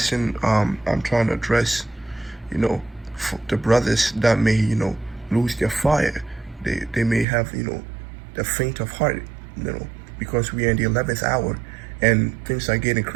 I'm trying to address, the brothers that may, lose their fire. They may have, the faint of heart, because we are in the 11th hour and things are getting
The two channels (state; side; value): drops out; left; at 7.2 s